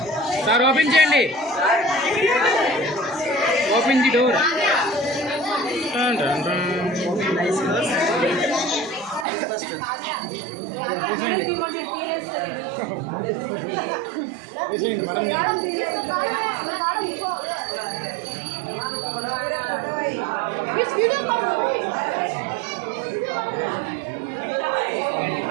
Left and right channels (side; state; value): left; drops out; at 9.2 s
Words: sir, open చేయండి. Open the door.